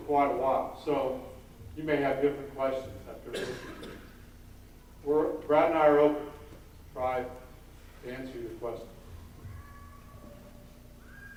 quite a while, so you may have different questions after listening to it. Brad and I are open to try to answer your questions.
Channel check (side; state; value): both; identical; correlation 1.00